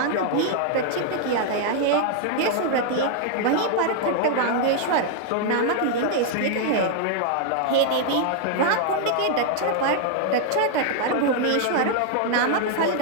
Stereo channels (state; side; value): different; both; correlation 0.00